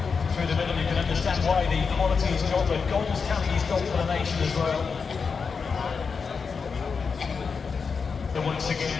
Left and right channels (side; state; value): right; quieter; 5.4 dB